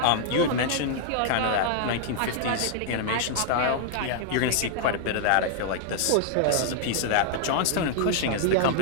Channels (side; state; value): both; different; correlation -0.01